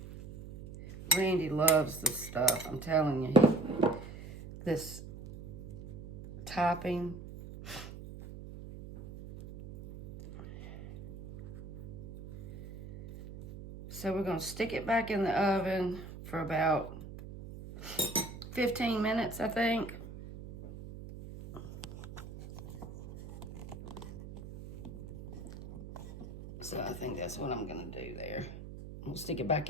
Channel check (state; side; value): noise; right; hum, 12 dB below the sound